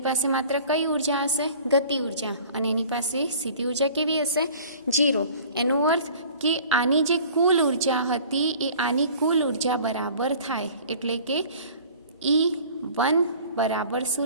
પાસે માત્ર કઈ ઉર્જા હશે? ગતિ ઉર્જા. અને એની પાસે સ્થિતિ ઉર્જા કેવી હશે? 0. એનો અર્થ કે આની જે કુલ ઉર્જા હતી એ આની કુલ ઉર્જા બરાબર થાય. એટલે કે E1 બરાબર શું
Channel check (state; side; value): inverted; both; correlation -0.47